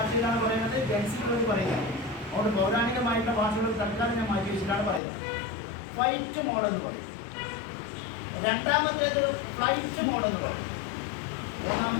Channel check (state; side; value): drops out; right; at 5.0 s